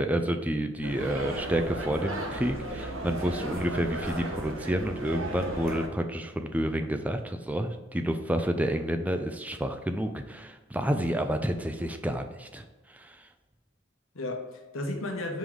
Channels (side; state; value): both; normal; correlation 0.75